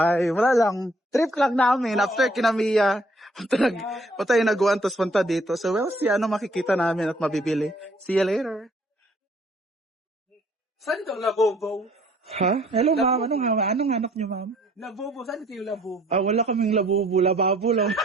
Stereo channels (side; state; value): both; normal; correlation 0.62